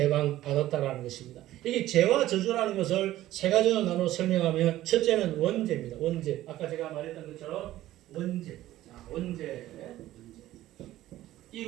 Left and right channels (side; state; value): left; quieter; 14.7 dB